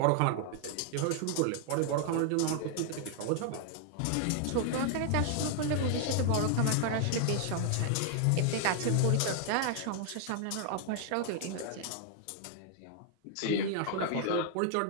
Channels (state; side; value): different; both; correlation 0.00